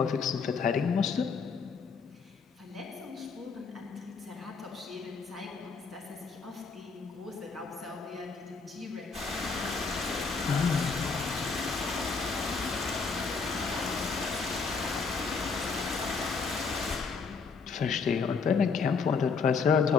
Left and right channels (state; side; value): quieter; right; 5.1 dB